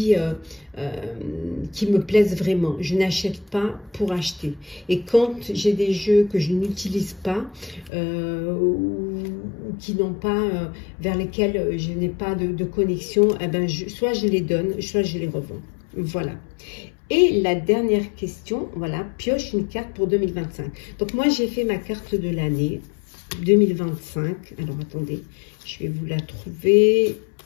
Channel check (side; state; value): right; drops out; at 7.9 s